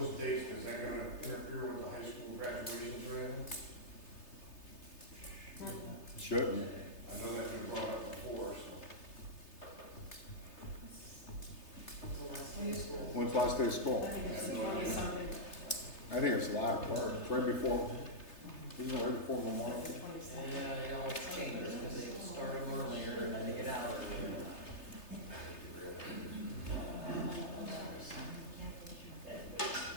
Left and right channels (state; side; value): late; right; 3.3 ms